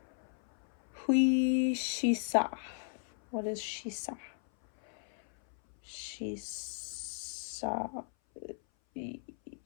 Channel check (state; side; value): silent; right; 54 dB below the other